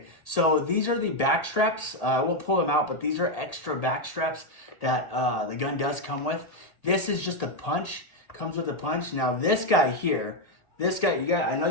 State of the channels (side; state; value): right; late; 1.8 ms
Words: so these are the back straps. I will pull them out, but these are extra back straps that the gun does come with. This is just a punch, comes with a punch. Now this guy here, I know